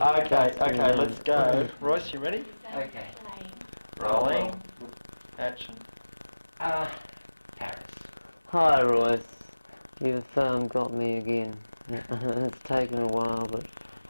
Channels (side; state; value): both; inverted; correlation -1.00